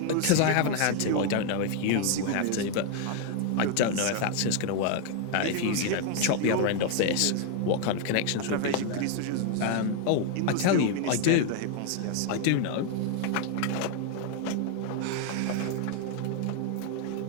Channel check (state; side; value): different; both; correlation 0.00